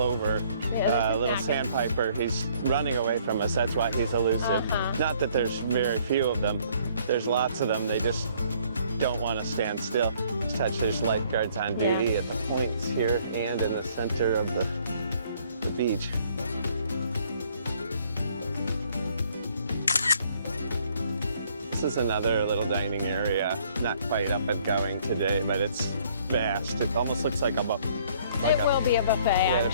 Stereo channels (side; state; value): both; inverted; correlation -0.62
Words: little sandpiper. He's running away from us. That's why he's elusive. Not that there's very few of them. There's lots of them. They just don't want to stand still. There's lifeguards on duty at the points here and in the center of the beach. This is another little dining area. Not quite up and going today, but it's vast. It almost looks like a buffet. It will be a buffet, yeah, I'm